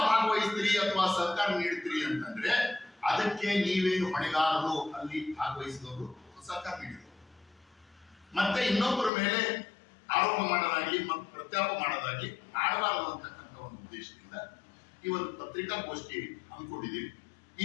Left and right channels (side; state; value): right; drops out; at 9.1 s